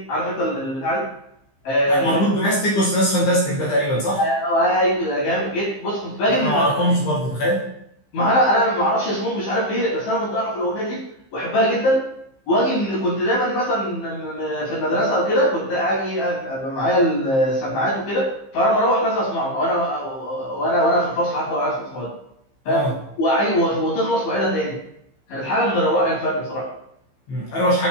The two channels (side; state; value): right; late; 15 ms